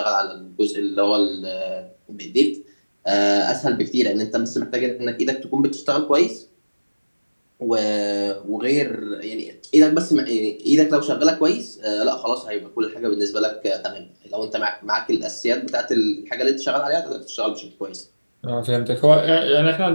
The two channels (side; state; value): both; inverted; correlation -1.00